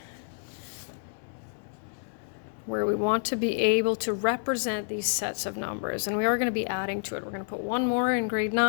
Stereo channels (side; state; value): right; silent; 59 dB below the other